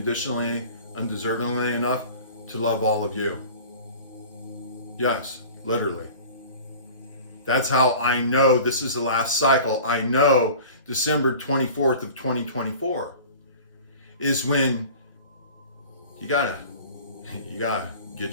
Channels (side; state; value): both; inverted; correlation -0.41